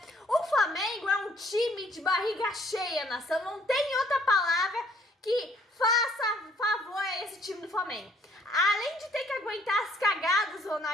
o Flamengo é um time de barriga cheia, nação, não tem outra palavra que faça favor a esse time do Flamengo. Além de ter que aguentar as cagadas do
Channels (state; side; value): normal; both; correlation 0.63